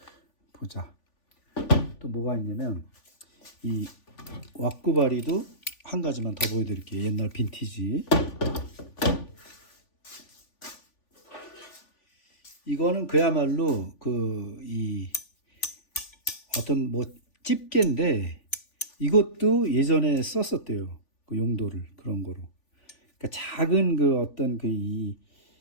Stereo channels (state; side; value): late; right; 3.5 ms